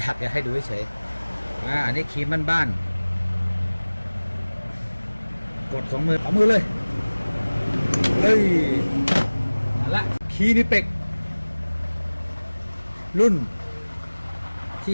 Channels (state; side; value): inverted; both; correlation -1.00